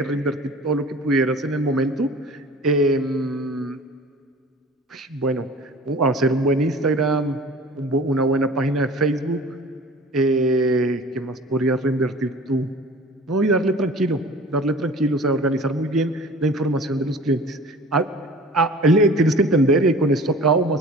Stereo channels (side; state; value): both; normal; correlation 0.43